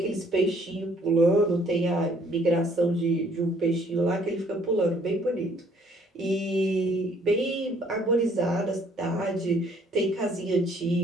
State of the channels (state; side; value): normal; both; correlation 0.61